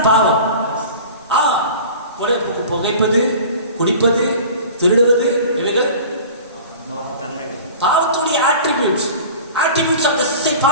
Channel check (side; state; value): both; inverted; correlation -0.40